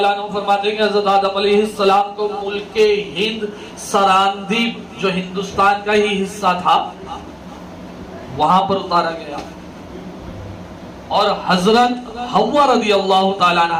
عنہ فرماتے ہیں کہ حضرت آدم علیہ السلام کو ملک ہند سراندیب جو ہندوستان کا ہی حصہ تھا وہاں پر اتارا گیا، اور حضرت حوا رضی اللہ تعالیٰ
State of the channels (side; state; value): both; identical; correlation 1.00